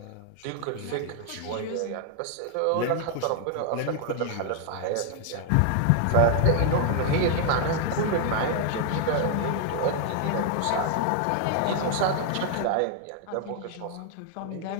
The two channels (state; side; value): different; both; correlation 0.00